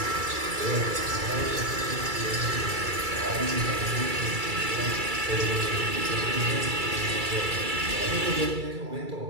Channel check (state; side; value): late; left; 2.3 ms